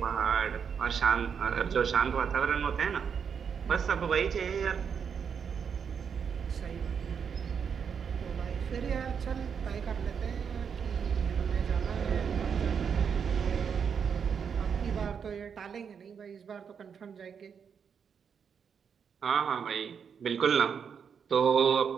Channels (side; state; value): left; quieter; 6.9 dB